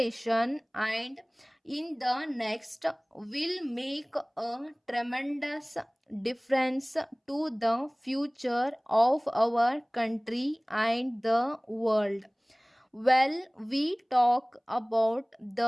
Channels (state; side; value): identical; both; correlation 1.00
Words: and in the next will make a tremendous difference to the future of our country and the world. Well, we talk about